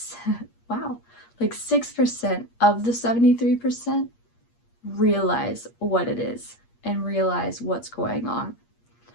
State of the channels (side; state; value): right; late; 8.5 ms